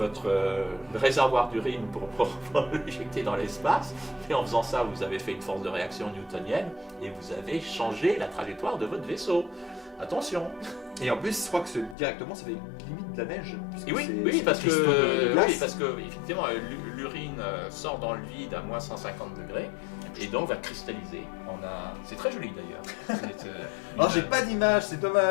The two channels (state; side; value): drops out; right; at 12.0 s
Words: réservoir d'urine pour l'éjecter dans l'espace. Et en faisant ça, vous avez fait une force de réaction newtonienne et vous avez changé la trajectoire de votre vaisseau. Attention. Et en plus, je crois que directement, ça fait limite de la neige. Oui, parce que effectivement, l'urine sort dans le vide à moins 150 degrés et donc va cristalliser. C'est très joli d'ailleurs. Alors, j'ai pas d'image, c'est